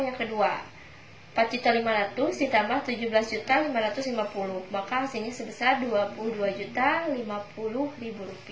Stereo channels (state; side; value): identical; both; correlation 1.00